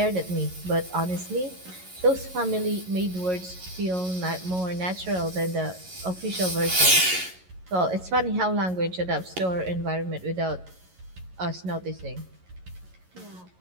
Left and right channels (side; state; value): left; late; 11 ms